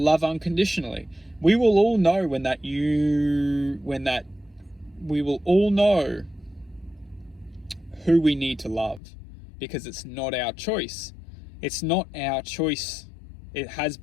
unconditionally. We will all know we will all know who we need to love, because it's not our choice. It's not our choice. It has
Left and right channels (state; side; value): drops out; right; at 9.0 s